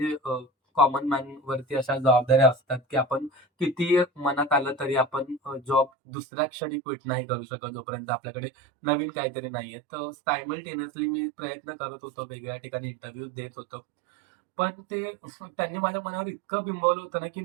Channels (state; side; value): drops out; left; at 5.9 s